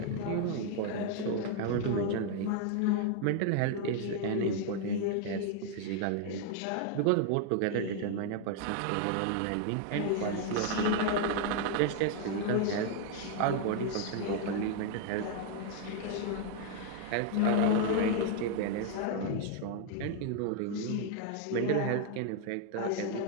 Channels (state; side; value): different; both; correlation 0.00